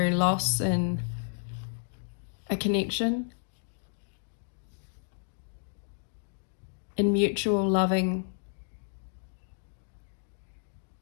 loss in a connection, in mutual loving,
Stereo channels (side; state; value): right; silent; digital silence